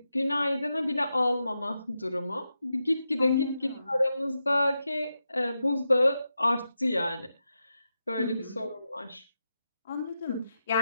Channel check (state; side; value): inverted; both; correlation -0.88